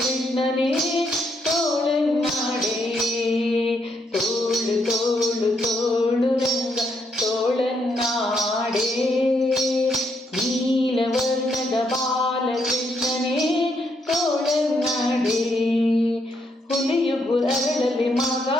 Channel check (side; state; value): both; normal; correlation 0.76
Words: ತೋಳನ್ನಾಡೆ. ತೋಳು ತೋಳು ತೋಳು ರಂಗ ತೋಳನ್ನಾಡೆ, ನೀಲವರ್ಣದ ಬಾಲಕೃಷ್ಣನೇ ತೋಳನ್ನಾಡೆ. ಹುಲಿಯುಗು ಅರಳಲಿ